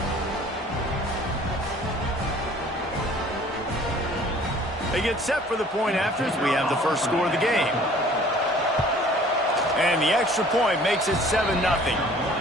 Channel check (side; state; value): both; normal; correlation 0.52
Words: They get set for the point after as we have the first score of the game. And the extra point makes it 7-0.